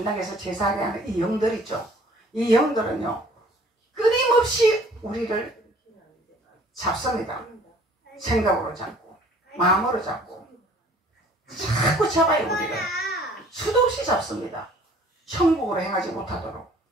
제사하게 하는 이 영들 있죠. 이 영들은요, 끊임없이 우리를 잡습니다. 생각으로 잡고 마음으로 잡고 자꾸 잡아요. 우리를 수도 없이 잡습니다. 천국으로 행하지 못하도록.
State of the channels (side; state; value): both; normal; correlation 0.54